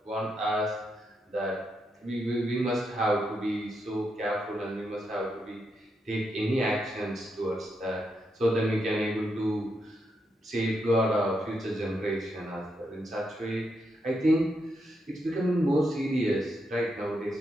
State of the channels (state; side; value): normal; both; correlation 0.82